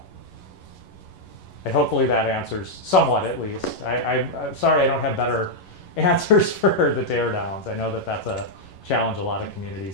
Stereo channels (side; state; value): right; late; 11 ms